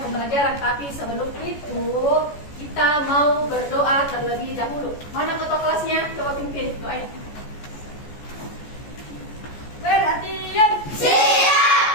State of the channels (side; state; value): right; late; 14 ms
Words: pembelajaran, tapi sebelum itu kita mau berdoa terlebih dahulu. Mana ketua kelasnya? Coba pimpin doanya. Perhatian.